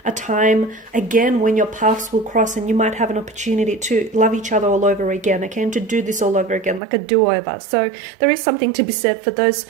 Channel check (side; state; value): left; drops out; at 6.8 s